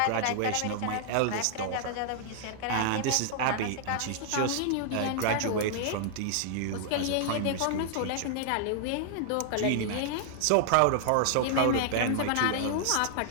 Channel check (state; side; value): different; both; correlation -0.01